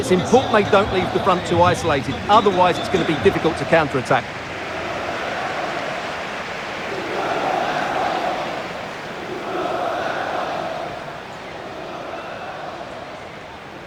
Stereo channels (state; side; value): identical; both; correlation 1.00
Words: important they don't leave the front two isolated. Otherwise, it's going to be difficult to counter-attack.